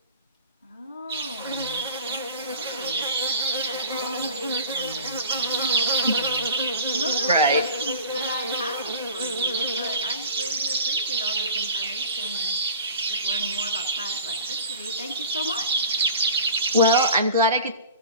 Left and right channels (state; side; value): inverted; both; correlation -0.39